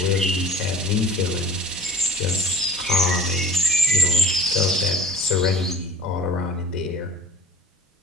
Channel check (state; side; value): normal; both; correlation 0.41